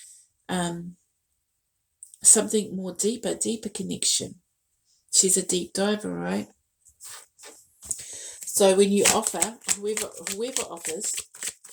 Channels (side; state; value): both; identical; correlation 1.00